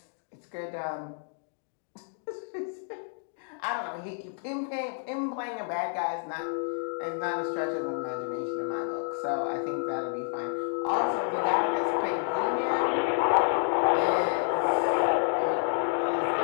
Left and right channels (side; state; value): right; silent; 58 dB below the other